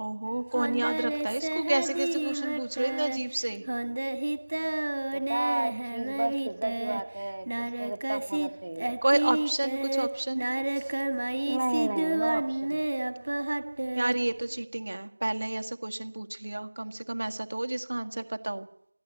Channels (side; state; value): both; inverted; correlation -1.00